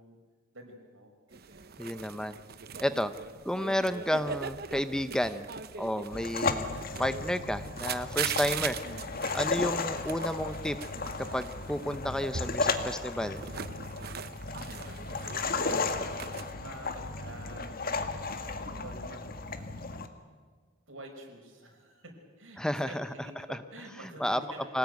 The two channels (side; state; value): both; normal; correlation 0.48